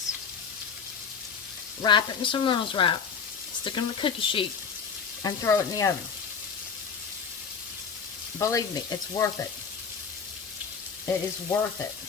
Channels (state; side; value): quieter; right; 6.1 dB